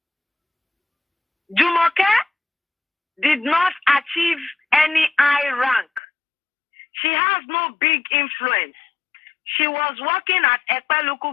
Jumoke did not achieve any high rank. She has no big influence. She was working at Ekpe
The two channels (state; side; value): drops out; right; at 6.0 s